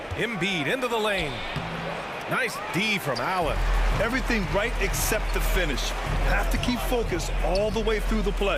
Embiid into the lane. Nice D from Allen. Everything right except the finish. Have to keep focus all the way through the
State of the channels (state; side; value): identical; both; correlation 1.00